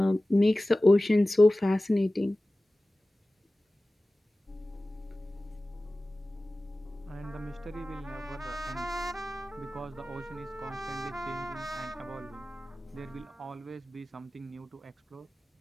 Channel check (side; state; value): both; normal; correlation 0.97